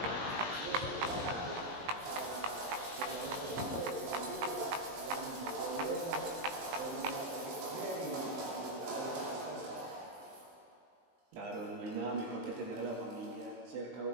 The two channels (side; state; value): left; late; 20 ms